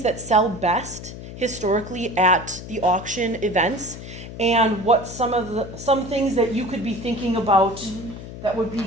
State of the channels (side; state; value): left; noise; hum, 12 dB below the sound